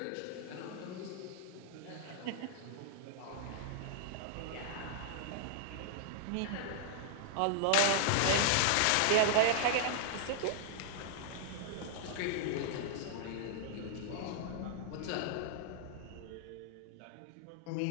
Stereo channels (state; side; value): different; both; correlation -0.01